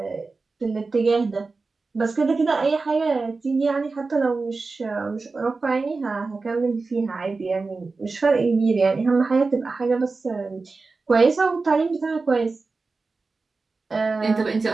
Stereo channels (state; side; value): quieter; left; 4.0 dB